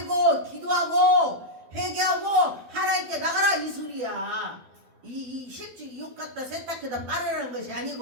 기도하고 회개하고 하나님께 나가라 이 소리야. 이 실제 이 옷 갖다 세탁해다 빨으라는 것이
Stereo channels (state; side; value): late; left; 12 ms